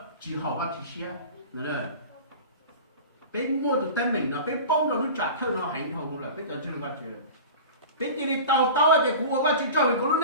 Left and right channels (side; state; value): both; inverted; correlation -0.35